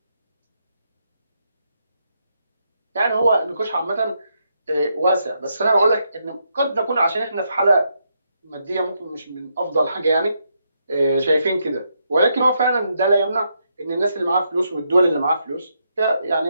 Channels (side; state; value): both; inverted; correlation -0.79